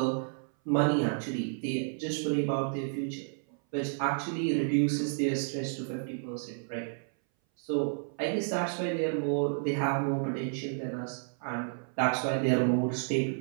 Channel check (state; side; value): silent; left; 57 dB below the other